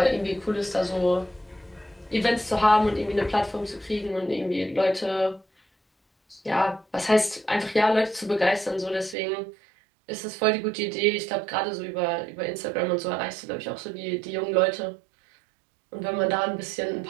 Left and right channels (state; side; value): drops out; left; at 9.2 s